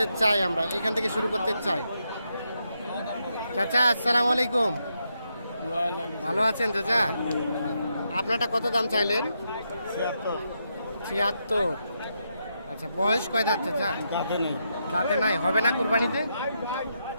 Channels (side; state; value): both; inverted; correlation -0.81